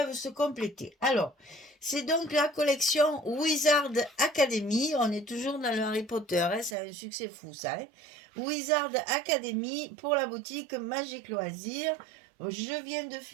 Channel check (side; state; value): left; drops out; at 6.8 s